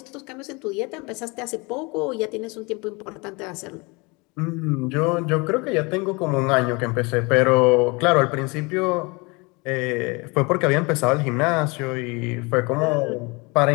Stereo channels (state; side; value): quieter; right; 27.4 dB